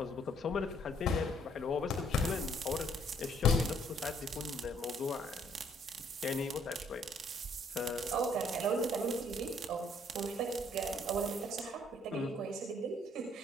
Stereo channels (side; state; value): both; normal; correlation 0.64